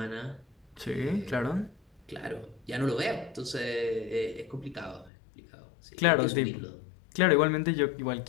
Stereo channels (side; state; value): right; drops out; at 5.1 s